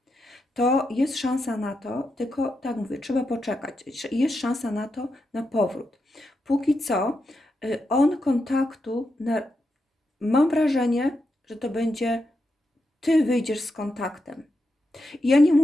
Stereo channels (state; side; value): normal; both; correlation 0.85